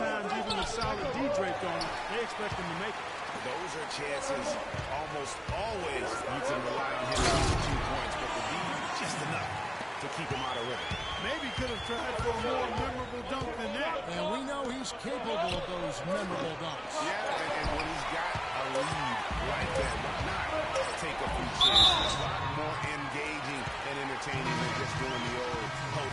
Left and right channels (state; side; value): identical; both; correlation 1.00